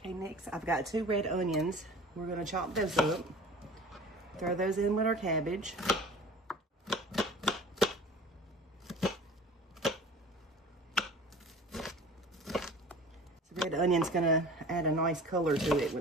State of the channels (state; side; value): normal; both; correlation 0.42